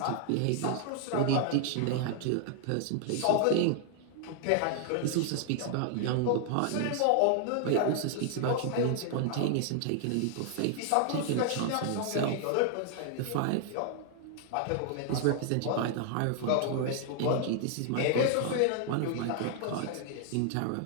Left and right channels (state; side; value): different; both; correlation 0.00